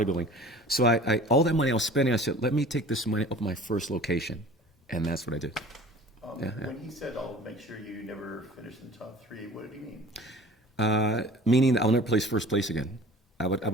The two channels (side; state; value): both; normal; correlation 0.44